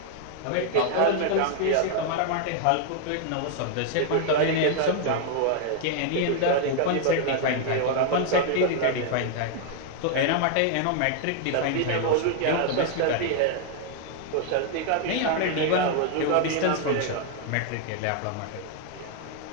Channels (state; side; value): different; both; correlation 0.00